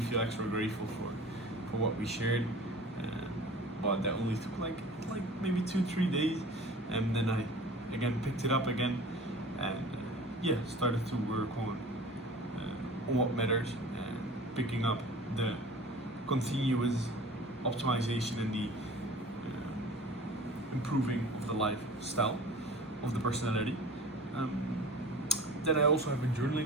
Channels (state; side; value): normal; both; correlation 0.41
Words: extra grateful for what we shared. But that only took like maybe 2-3 days, and then I again picked it up again, and started to work on what matters, and picking up the continuous optimization and the improving of the lifestyle, of the personality. Then I also have been